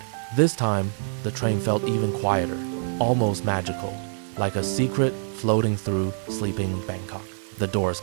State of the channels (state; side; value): silent; left; 61 dB below the other